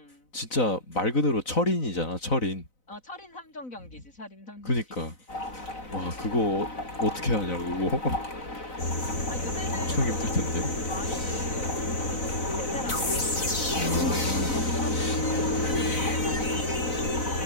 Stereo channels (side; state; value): right; late; 4.0 ms